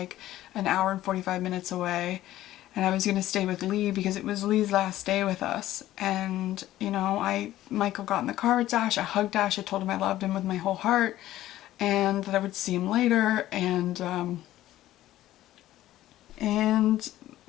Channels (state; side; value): quieter; right; 14.3 dB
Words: an hour and 45 minutes away, and I was gonna stay with Lee because it was Lee's last day with us. And you know, Michael got in the car with Dash, I hugged Dash, I told him I loved him with my whole heart and that I would see him later. And